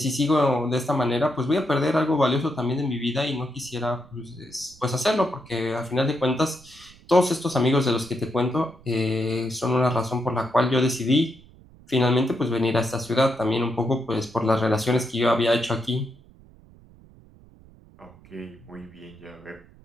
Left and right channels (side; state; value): right; noise; rumble, 25 dB below the sound